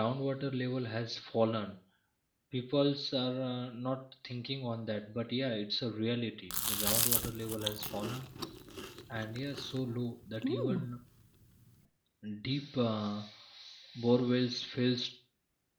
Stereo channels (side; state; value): both; identical; correlation 1.00